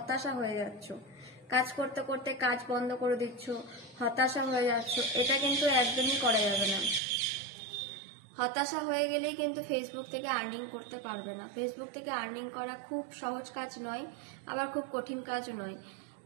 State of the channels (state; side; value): drops out; left; at 7.0 s